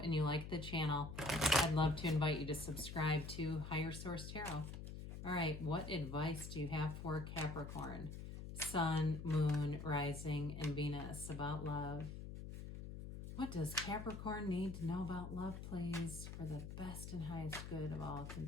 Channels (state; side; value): noise; left; hum, 8 dB below the sound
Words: and you like the channel, I'd love to invite you to subscribe to Higher Source Tarot. All right, what advice do you have for Capricorn, Sun, Moon, Rising, and Venus about love? What does Capricorn need to know about love, please, for the best and highest good of all